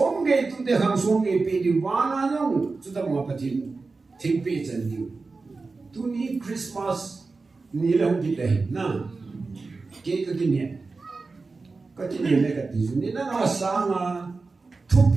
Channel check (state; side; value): quieter; left; 4.0 dB